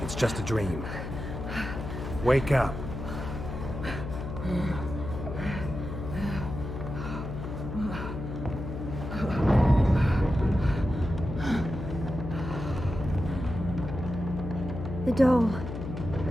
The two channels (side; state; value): left; noise; hum, 7 dB below the sound